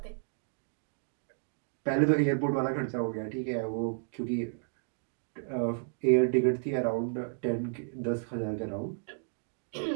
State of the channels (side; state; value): left; silent; digital silence